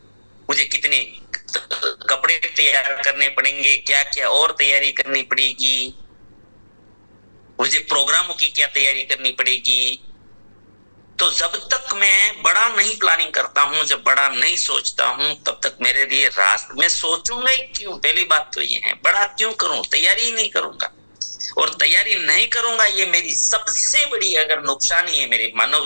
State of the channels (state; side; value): inverted; both; correlation -1.00